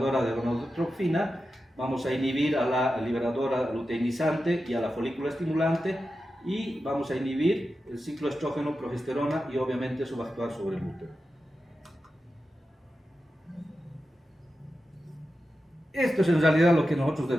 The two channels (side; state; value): both; normal; correlation 0.91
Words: de gonadotropina, vamos a inhibir a la liberadora luteinizante y a la folícula estimulante, y vamos a inhibir el ciclo estrógeno-progesterona, y obviamente eso va a actuar sobre el útero. Esto es en realidad lo que nosotros